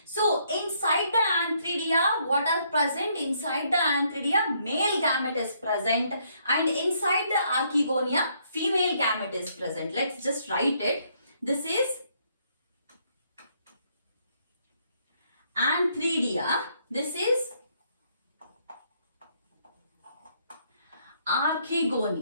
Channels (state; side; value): inverted; both; correlation -0.70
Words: So inside the antheridia, what are present? Inside the antheridia, male gamete is present, and inside the archegonia, female gamete is present. Let's just write it. This is antheridia. This is